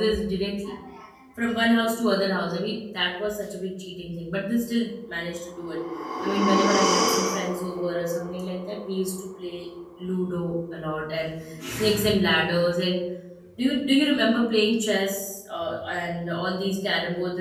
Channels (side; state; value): both; identical; correlation 1.00